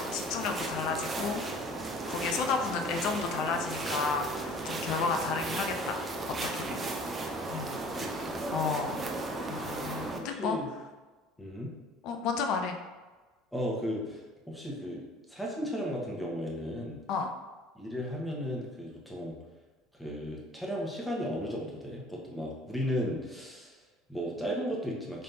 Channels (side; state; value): both; normal; correlation 0.50